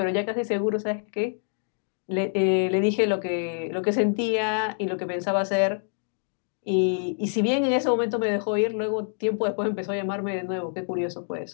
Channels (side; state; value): right; silent; digital silence